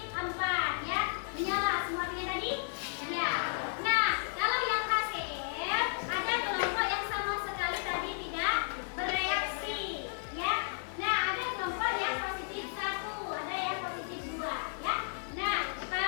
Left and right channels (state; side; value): silent; right; digital silence